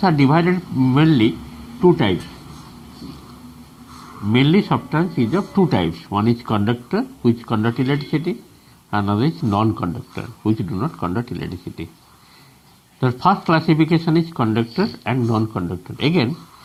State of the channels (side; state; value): both; identical; correlation 1.00